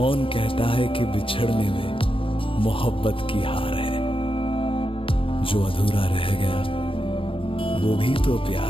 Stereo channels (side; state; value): right; late; 0.26 ms